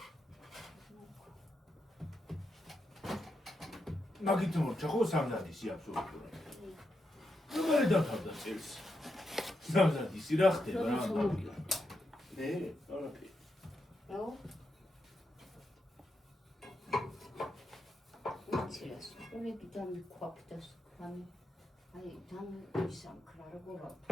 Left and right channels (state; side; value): normal; both; correlation 0.84